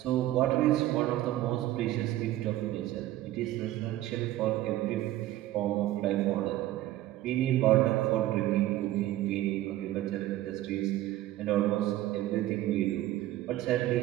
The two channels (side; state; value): left; quieter; 14.8 dB